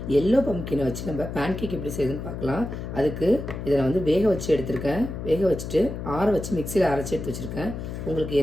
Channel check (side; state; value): left; noise; hum, 7 dB below the sound